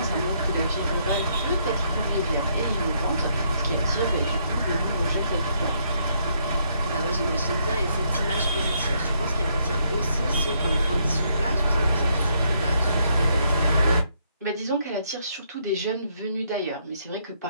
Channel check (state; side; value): inverted; both; correlation -0.72